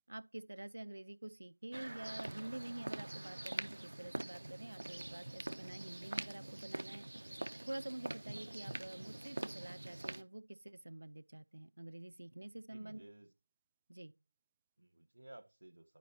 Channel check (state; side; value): inverted; both; correlation -1.00